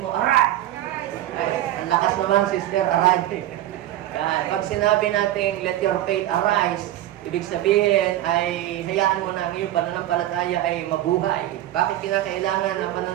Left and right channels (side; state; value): left; quieter; 13.7 dB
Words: mo, arise! Ay, ang lakas naman, sister, arise. Pag sinabi natin, let your faith arise, ibig sabihin ay hayaan mo na ang iyong pananampalataya ay mabuhay. Bakit kinakailangan ang